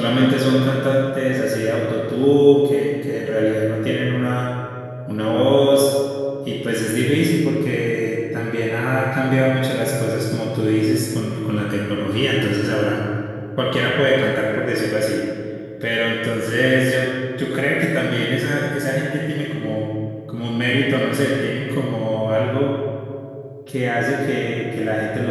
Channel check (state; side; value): identical; both; correlation 1.00